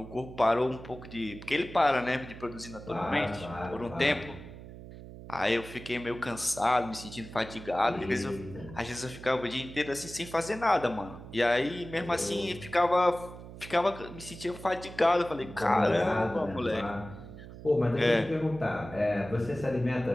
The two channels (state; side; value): noise; right; hum, 14 dB below the sound